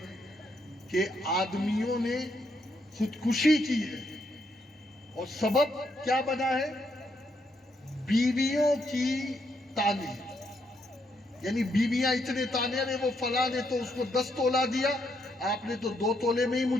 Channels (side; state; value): both; normal; correlation 0.76